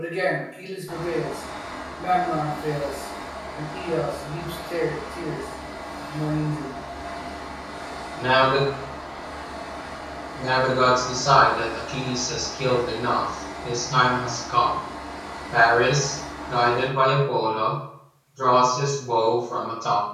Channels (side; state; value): both; identical; correlation 1.00